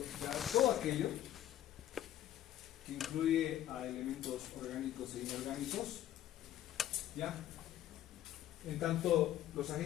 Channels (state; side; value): quieter; right; 12.5 dB